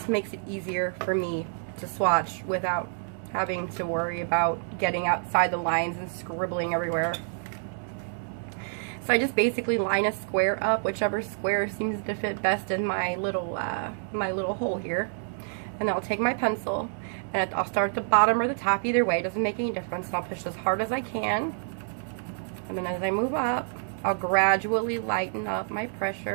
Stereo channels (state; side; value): silent; left; 59 dB below the other